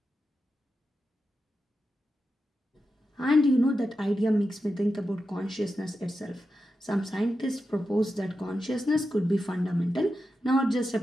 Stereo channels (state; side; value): normal; both; correlation 0.90